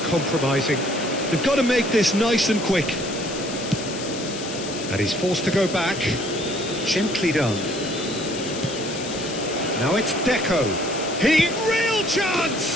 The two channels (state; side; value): noise; left; hiss, 10 dB below the sound